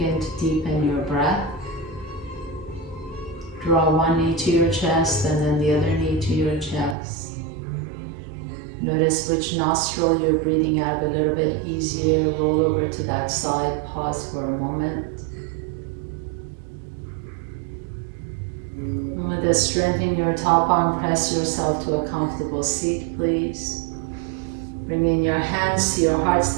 to deepen your breath. Draw one knee to your chest and then the other knee to your chest. Notice which nostril you're breathing out of a little bit easier. Roll over to that side, pause for a moment. And with a strength in your top arm, press yourself to a comfortable seat, please. Bring in your hands to your heart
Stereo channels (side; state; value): left; drops out; at 7.0 s